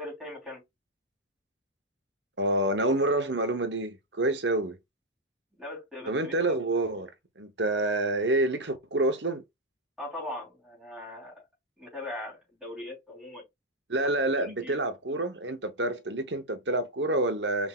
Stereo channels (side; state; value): both; normal; correlation -0.02